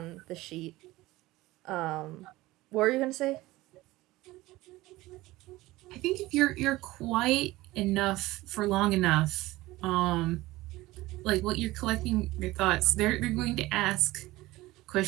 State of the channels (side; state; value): left; quieter; 18.6 dB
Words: the sheet. What were you gonna say? I think if you're quiet enough for long enough, like what you're collecting your thoughts, they're going to ask a